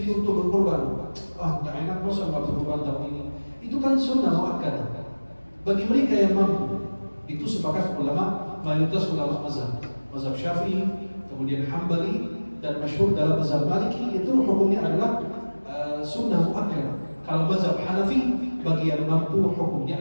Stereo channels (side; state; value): both; inverted; correlation -1.00